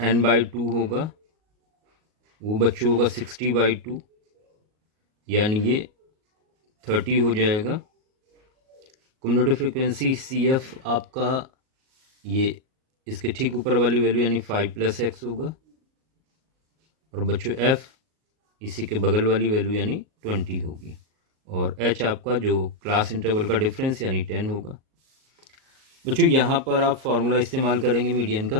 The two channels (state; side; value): late; left; 38 ms